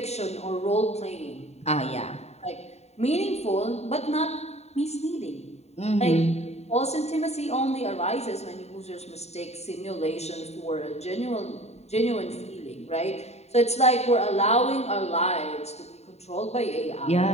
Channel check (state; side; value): late; right; 0.31 ms